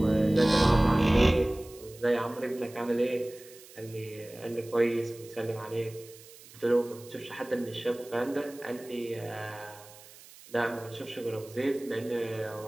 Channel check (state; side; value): noise; right; hiss, 21 dB below the sound